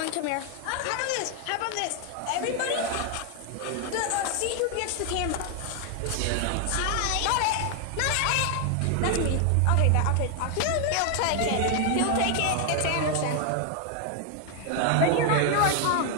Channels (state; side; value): different; both; correlation 0.00